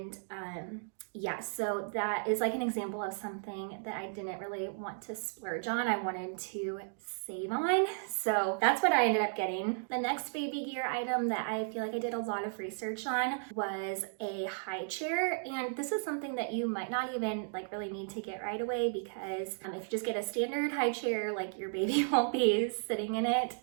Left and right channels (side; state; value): left; silent; digital silence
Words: yeah, so that is like an example of something that I didn't really want to splurge on. I wanted to save on. So that's what I ended up getting. The next baby gear item that I feel like I did a lot of research on was a high chair. And this is something that you might not even like really need to get right away, because if you just get a standard high chair, like your baby won't be sitting in it